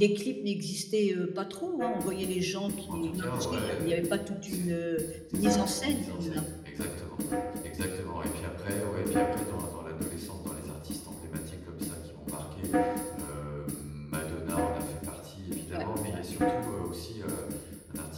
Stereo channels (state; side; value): identical; both; correlation 1.00